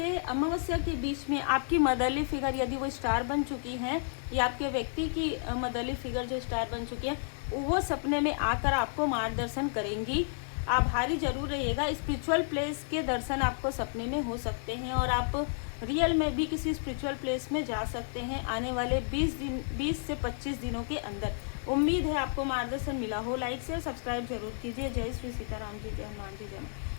अमावस्या के बीच में आपकी मदरली फिगर यदि वो स्टार बन चुकी हैं, या आपके व्यक्ति की मदरली फिगर जो स्टार बन चुकी है, वो सपने में आकर आपको मार्गदर्शन करेंगी। आभारी जरूर रहिएगा। स्पिरिचुअल प्लेस के दर्शन आपको सपने में हो सकते हैं और आप रियल में भी किसी स्पिरिचुअल प्लेस में जा सकते हैं आने वाले 20 से 25 दिनों के अंदर। उम्मीद है आपको मार्गदर्शन मिला हो। लाइक शेयर सब्सक्राइब जरूर कीजिए। जय श्री सीताराम जी, जय हनुमान जी,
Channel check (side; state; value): right; silent; 57 dB below the other